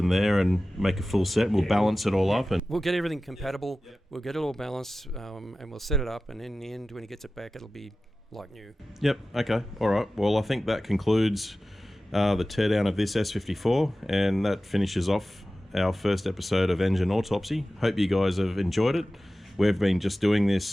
there and make a full set. We'll balance it all up, and we'll get everything compatible. We'll get it all balanced, and we'll set it up, and in the end when he gets it back it'll be like new. Yep. Okay. All right. Well, I think that concludes the teardown of this S54, and that finishes off our first episode of Engine Autopsy. Hope you guys have enjoyed it. We've been just doing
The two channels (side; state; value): both; normal; correlation 0.95